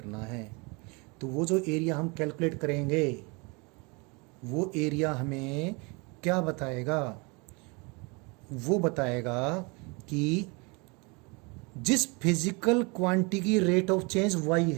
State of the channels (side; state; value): left; quieter; 29.2 dB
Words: है। तो वो जो एरिया हम कैलकुलेट करेंगे वो एरिया हमें क्या बताएगा, वो बताएगा कि जिस फिजिकल क्वांटिटी की रेट ऑफ चेंज y